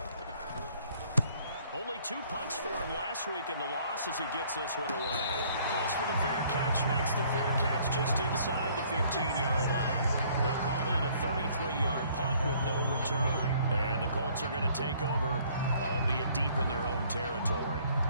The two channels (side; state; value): both; inverted; correlation -0.60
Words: Only 2 punts for him last week in the loss as he gets this one away. Calls for the fair catch, makes the fair catch just inside the 15-yard line. They'll call that a 33-yard punt with no return. And the Colts are going to take over, albeit deep in their own territory.